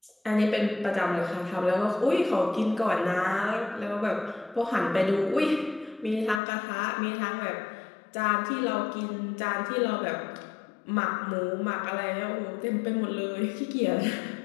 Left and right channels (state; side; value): drops out; right; at 6.4 s